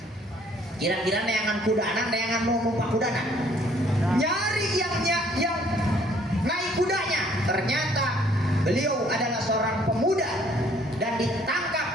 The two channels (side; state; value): both; normal; correlation 0.61